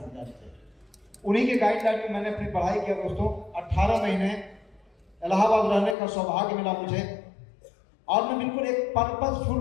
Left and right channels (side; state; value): right; drops out; at 6.0 s